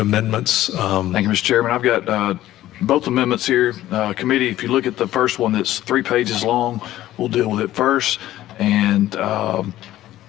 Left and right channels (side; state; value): right; quieter; 14.3 dB